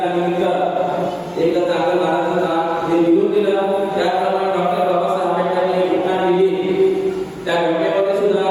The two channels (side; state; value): both; identical; correlation 1.00